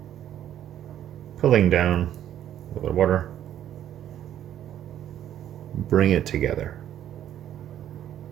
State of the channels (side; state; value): left; quieter; 11.0 dB